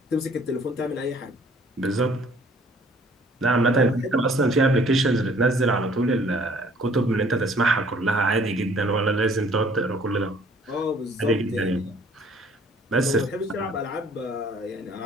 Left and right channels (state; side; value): normal; both; correlation 0.57